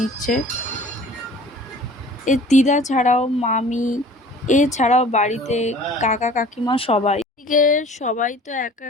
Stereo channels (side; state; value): both; normal; correlation 0.47